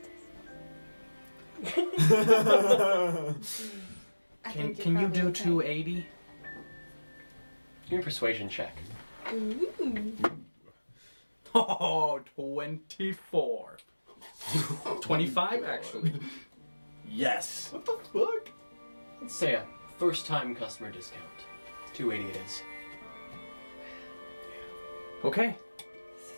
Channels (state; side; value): inverted; both; correlation -1.00